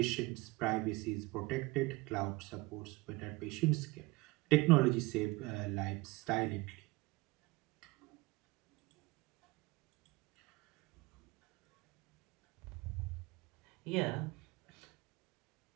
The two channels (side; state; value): left; quieter; 22.7 dB